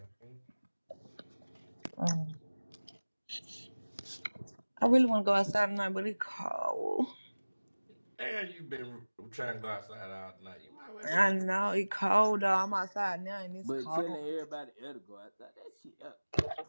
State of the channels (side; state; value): both; inverted; correlation -1.00